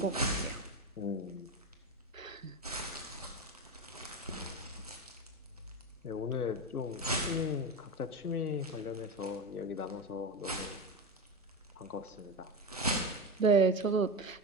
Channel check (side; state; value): both; normal; correlation 0.19